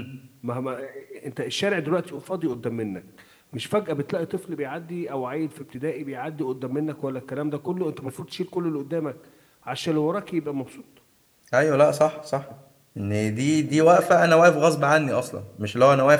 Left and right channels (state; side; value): identical; both; correlation 1.00